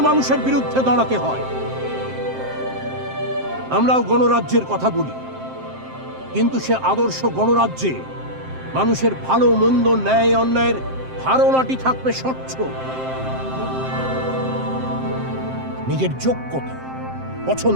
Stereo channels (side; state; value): left; late; 7.6 ms